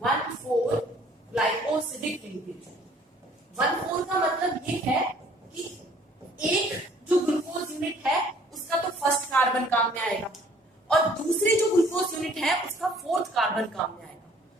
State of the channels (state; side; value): normal; both; correlation 0.57